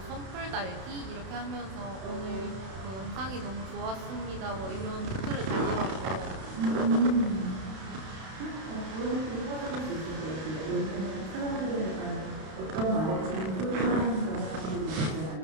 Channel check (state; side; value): late; left; 32 ms